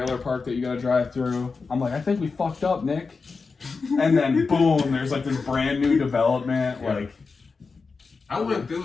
park that you gotta drive through. I'm like, I think we fucked up, Nick. And then boom, there's like this brand new development. Yeah. Like, I went through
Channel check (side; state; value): right; quieter; 4.6 dB